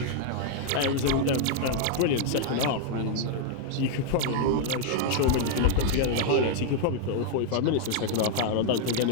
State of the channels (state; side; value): different; both; correlation 0.00